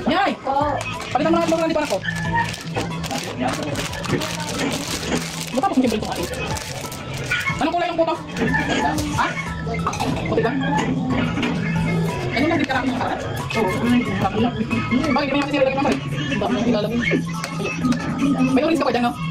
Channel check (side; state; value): both; identical; correlation 1.00